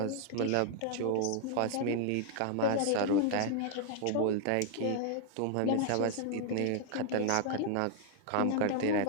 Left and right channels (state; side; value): different; both; correlation 0.00